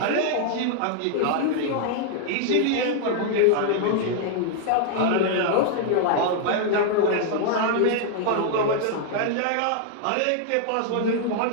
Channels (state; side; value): different; both; correlation -0.01